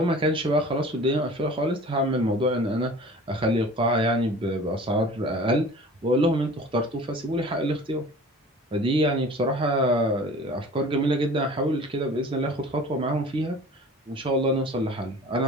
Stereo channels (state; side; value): normal; both; correlation 0.43